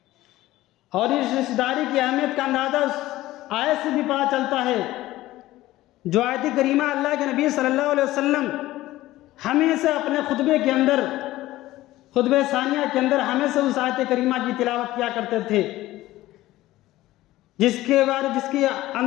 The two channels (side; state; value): right; quieter; 16.4 dB